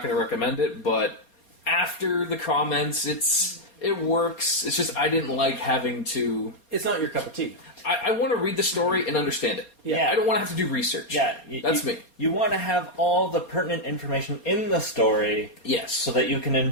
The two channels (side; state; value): right; late; 4.3 ms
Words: going to recommend it. But after the comments, it works. It's just I didn't like having to. It's not your cup of tea. I want to read the story and understand it. Yeah. I don't want to have to do research. Yeah, that's me. You want to have all the pertinent information in the story, Yes, so that you can